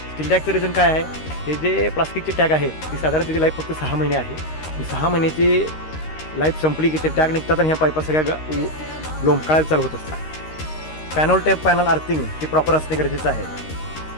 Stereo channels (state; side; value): late; right; 13 ms